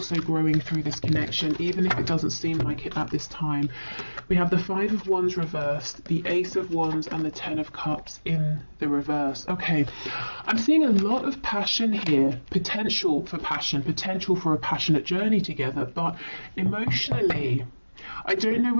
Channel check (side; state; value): both; inverted; correlation -1.00